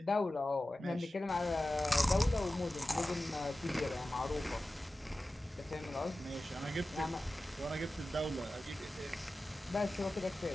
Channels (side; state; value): both; normal; correlation 0.95